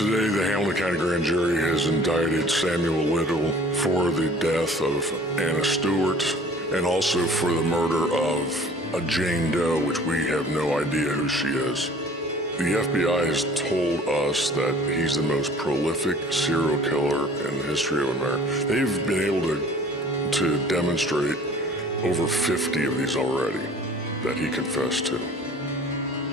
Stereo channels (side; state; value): both; normal; correlation 0.50